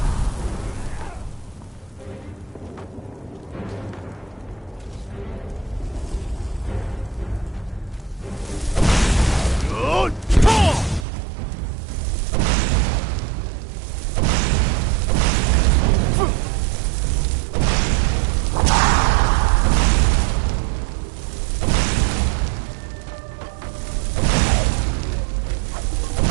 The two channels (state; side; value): drops out; left; at 11.1 s